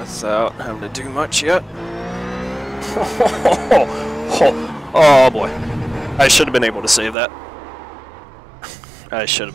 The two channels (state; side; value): drops out; left; at 7.2 s